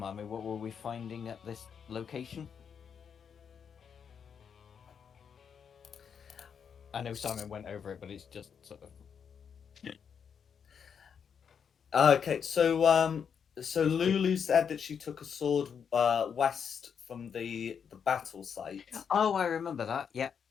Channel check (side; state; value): right; quieter; 7.1 dB